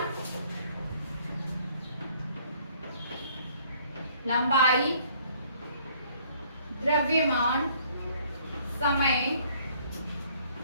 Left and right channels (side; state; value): both; inverted; correlation -0.61